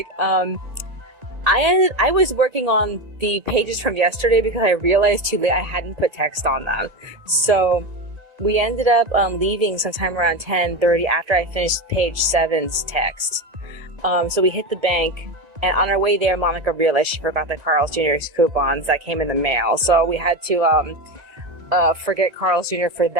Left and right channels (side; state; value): left; late; 1.9 ms